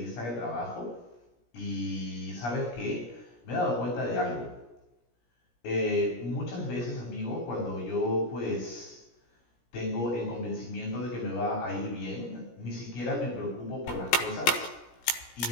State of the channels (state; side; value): late; right; 17 ms